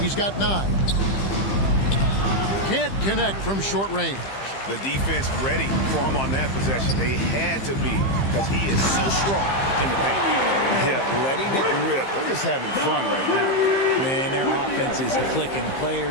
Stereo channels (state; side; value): late; right; 15 ms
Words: He's got 9. Can't connect from short range. The defense ready for him on that possession. They had to be because he is so strong in the paint. Yeah, letting it rip. They're just having fun right now. Man, their offense is clicking.